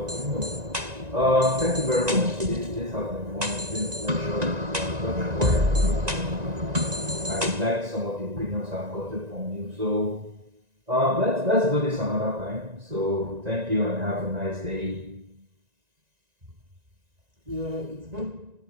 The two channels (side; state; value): left; late; 1.9 ms